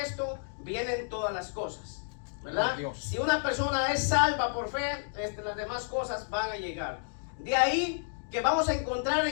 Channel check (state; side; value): silent; right; digital silence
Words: esto vienen todas las cosas, ¿verdad? Si una persona es salva por fe, las demás cosas van a llegar. De ahí que vamos a encontrar